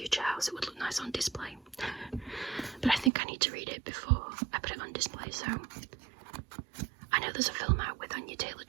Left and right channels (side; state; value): left; drops out; at 3.1 s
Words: house it would look nice on display. But I think I need to read it before I put it on display, so I know there's a film out with Anya